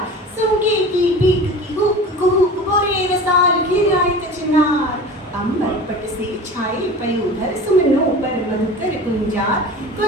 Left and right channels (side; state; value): both; normal; correlation 0.36